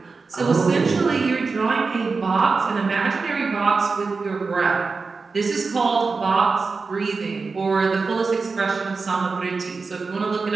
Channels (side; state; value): left; quieter; 4.4 dB